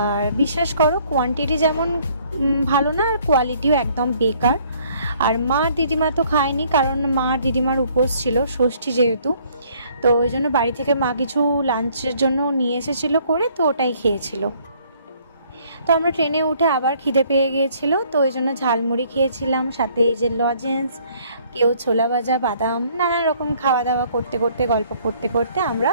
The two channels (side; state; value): both; inverted; correlation -0.62